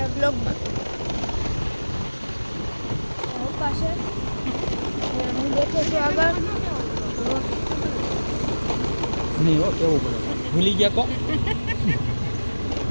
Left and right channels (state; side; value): inverted; both; correlation -1.00